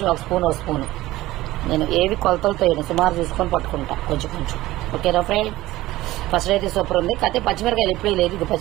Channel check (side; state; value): left; quieter; 17.0 dB